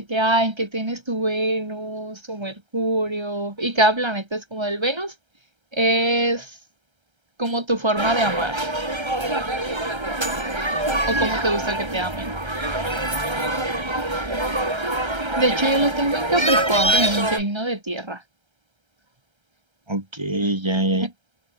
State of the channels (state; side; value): late; left; 1.3 ms